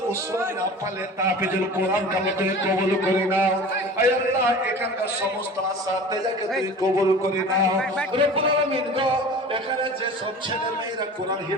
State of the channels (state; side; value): normal; both; correlation 0.39